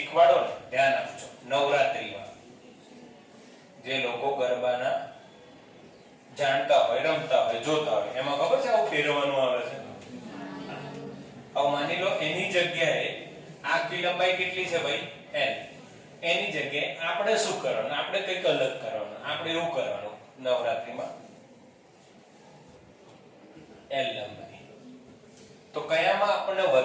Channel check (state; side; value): identical; both; correlation 1.00